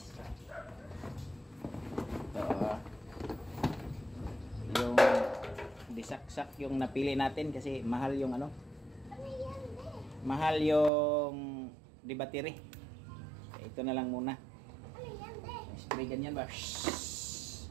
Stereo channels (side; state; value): left; drops out; at 10.9 s